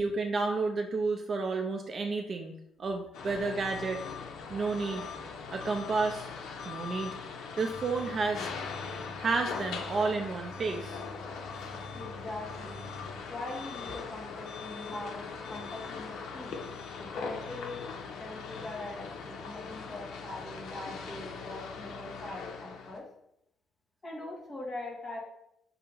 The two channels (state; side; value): normal; both; correlation 0.78